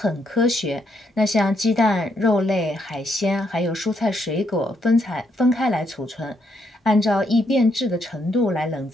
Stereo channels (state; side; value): normal; both; correlation 0.76